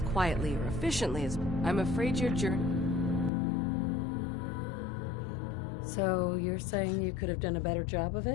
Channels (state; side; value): drops out; right; at 3.3 s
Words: quietly or efficiently as... I'm afraid your journey... So, you're saying you could have done a better job of